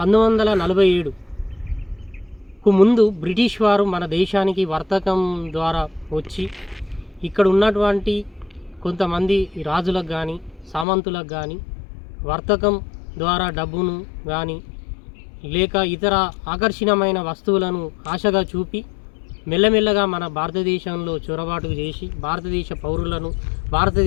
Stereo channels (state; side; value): drops out; right; at 10.9 s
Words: 1947కు ముందు బ్రిటిష్ వారు మన దేశానికి వర్తకం ద్వారా వచ్చి ఇక్కడ ఉన్నటువంటి కొంతమంది రాజులకు కానీ సామంతులకు కానీ వర్తకం ద్వారా డబ్బును కానీ లేక ఇతర ఆకర్షణీయమైన వస్తువులను ఆశగా చూపి మెల్లమెల్లగా మన భారతదేశంలో చొరబాటు చేసి భారతదేశ పౌరులను,